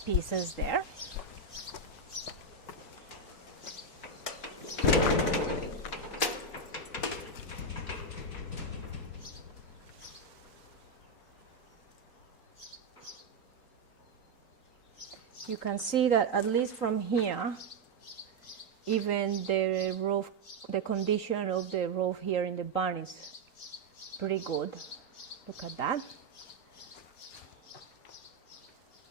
pieces there. You can see that at least from here, even the roof, the condition of the roof here in the barn is pretty good. Look at that.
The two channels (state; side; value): quieter; left; 3.4 dB